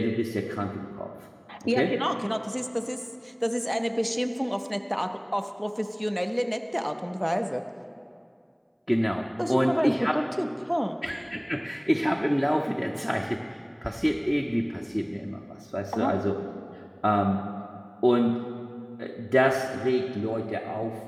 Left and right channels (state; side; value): identical; both; correlation 1.00